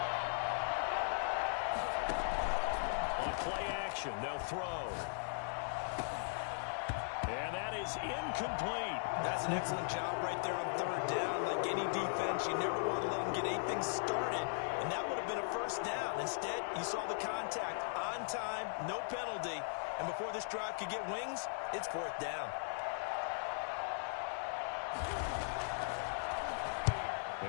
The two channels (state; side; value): silent; right; digital silence